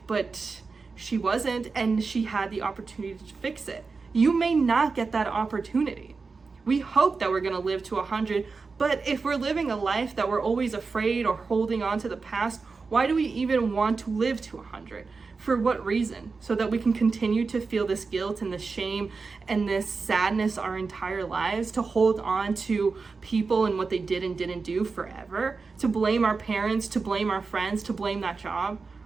but she wasn't, and she had the opportunity to fix it. You may not get that opportunity. We hope that we're gonna live to 100, but if we're living a life that we're always afraid or holding on to the past, why do we even want to live to 100? For what reason? So that we can continue to feel this guilt and this shame and this sadness our entire lives, to hold on to people and what they did and didn't do forever, to blame our parents, to blame our friends, to blame that job?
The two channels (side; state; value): left; quieter; 4.5 dB